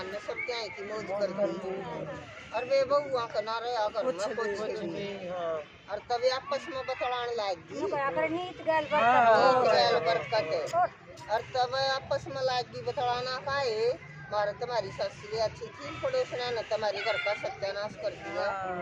ने सब क्या है कि मौज कर दी और वे बहुआ का ना रहे अगर मैं कुछ और तभी आपस में बतलाने लगी नीत गैल बरकत और तब आपस में लगी बतलाना का है मारे तुम्हारी ससुर अच्छी थी पड़ोसन ने तुम्हारे घर का सत्यानाश कर दिया।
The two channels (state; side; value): identical; both; correlation 1.00